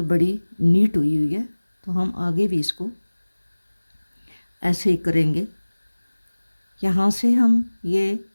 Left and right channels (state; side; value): inverted; both; correlation -1.00